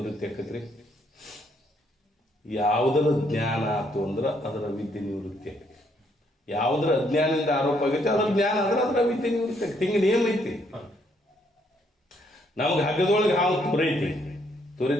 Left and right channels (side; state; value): both; normal; correlation 0.71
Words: ಆಕತ್ರಿ. ಯಾವುದರ ಜ್ಞಾನ ಆತು ಅಂದ್ರೆ ಅದರ ವಿದ್ಯೆ ನಿವೃತ್ತಿ ಆಕತಿ. ಯಾವುದರ ಅಜ್ಞಾನದಿಂದ ಆರೋಪ ಆಗೈತೆ ಅದರ ಜ್ಞಾನ ಆದ್ರೆ ಅದರ ವಿದ್ಯೆ ನಿವೃತ್ತಿ ಆಕತಿ. ಹಿಂಗೆ ನೇಮ ಐತಿ. ನಮ್ಗೆ ಹಗ್ಗದೊಳಗೆ ಹಾವು ತೋರೈತಿ